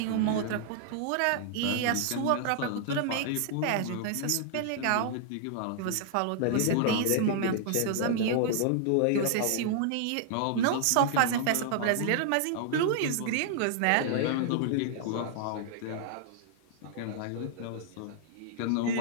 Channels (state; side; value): different; both; correlation -0.01